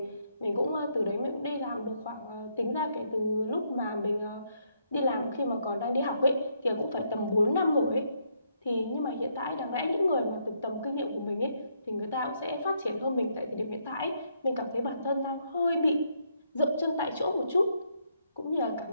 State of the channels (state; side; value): inverted; both; correlation -0.75